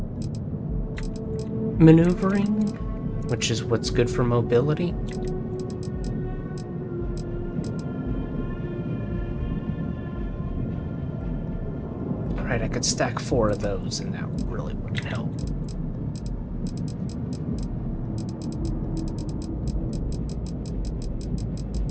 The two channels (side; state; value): both; identical; correlation 1.00